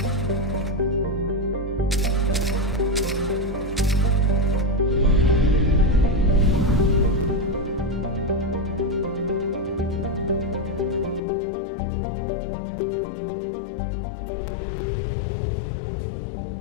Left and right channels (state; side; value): drops out; right; at 11.2 s